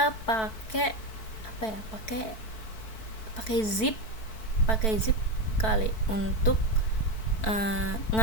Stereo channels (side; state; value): right; late; 4.5 ms